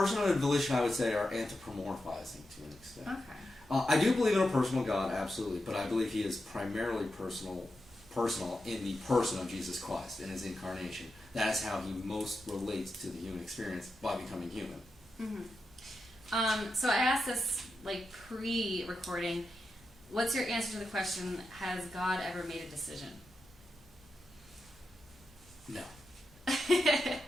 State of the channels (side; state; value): both; normal; correlation 0.89